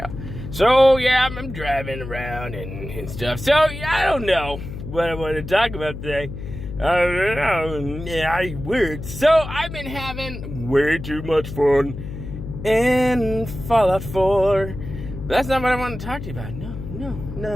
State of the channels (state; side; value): noise; left; hum, 9 dB below the sound